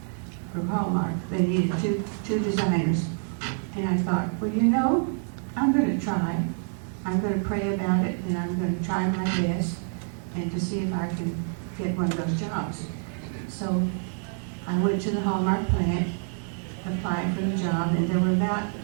from Hallmark. They needed two designers. And I thought, well, you know, I'm going to try. I'm going to pray about it, and I'm going to try my best and to see if I can get one of those jobs. So I went to the Hallmark plant, applied for the job, and there were about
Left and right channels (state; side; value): silent; left; 55 dB below the other